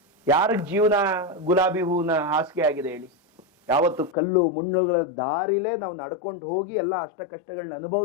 ಯಾರಿಗ್ ಜೀವನ ಗುಲಾಬಿ ಹೂವಿನ ಹಾಸಿಗೆ ಆಗಿದೆ ಹೇಳಿ? ಯಾವತ್ತು ಕಲ್ಲು ಮುಳ್ಳುಗಳ ದಾರಿಲೇ ನಾವು ನಡ್ಕೊಂಡು ಹೋಗಿ ಎಲ್ಲ ಅಷ್ಟ ಕಷ್ಟಗಳನ್ನ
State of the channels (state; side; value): drops out; right; at 4.1 s